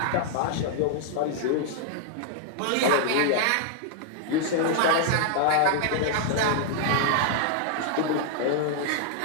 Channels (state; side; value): different; both; correlation -0.01